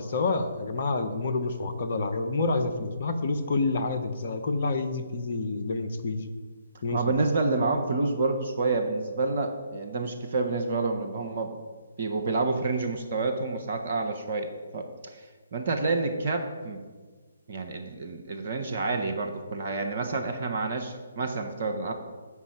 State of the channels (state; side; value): inverted; both; correlation -0.66